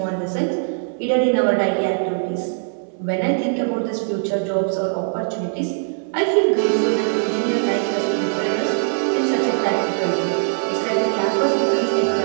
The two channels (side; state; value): left; silent; 62 dB below the other